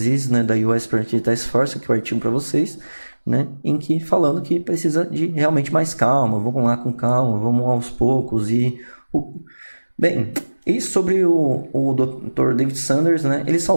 da US Preventive Task Force, aqui o artigo para vocês, em que falando que precisa de realmente mais calma, vamos lá com calma, vamos aos poucos. Bem, e sobre o Dr. David Sanders, ele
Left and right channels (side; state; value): both; inverted; correlation -1.00